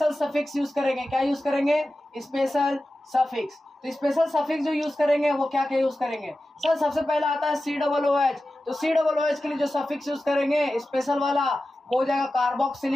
सफिक्स यूज करेंगे। क्या यूज करेंगे? Special suffix. तो स्पेशल सफिक्स जो यूज करेंगे वो क्या क्या यूज करेंगे? सर सबसे पहला आता है COOH। तो COOH के लिए जो सफिक्स यूज करेंगे स्पेशल वाला वो हो जाएगा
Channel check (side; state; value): both; normal; correlation 0.94